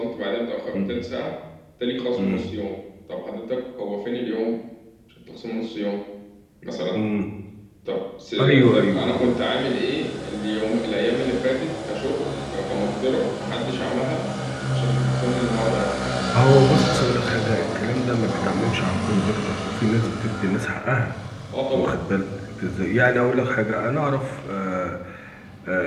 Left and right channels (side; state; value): both; identical; correlation 1.00